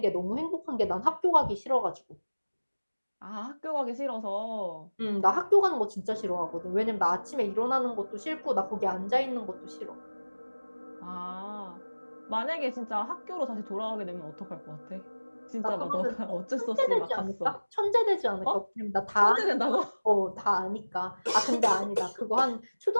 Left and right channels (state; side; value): inverted; both; correlation -1.00